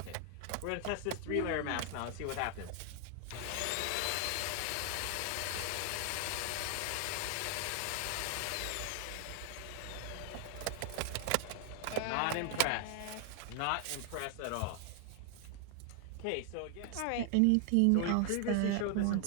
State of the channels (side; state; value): both; different; correlation 0.00